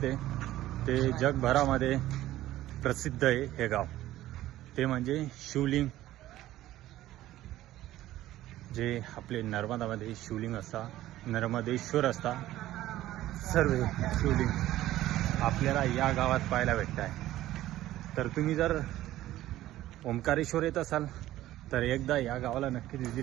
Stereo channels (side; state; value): left; quieter; 14.7 dB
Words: आहे. ते जगभरामध्ये प्रसिद्ध आहे हे गाव. ते म्हणजे शिवलिंग, जे आपले नर्मदामध्ये शिवलिंग असता, नर्मदेश्वर असता, सर्व शिवलिंग आपल्याला या गावात पाहायला भेटत आहे. तर तुम्ही जर ओंकारेश्वर येत असाल तर एकदा या गावाला नक्की